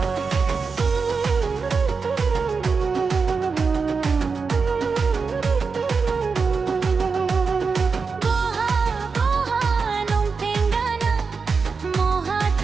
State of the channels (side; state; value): left; quieter; 4.9 dB